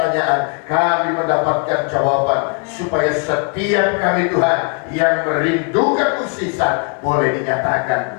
kami mendapatkan jawaban, supaya setiap kami Tuhan yang merindukan mukjizat boleh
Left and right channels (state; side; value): quieter; right; 37.1 dB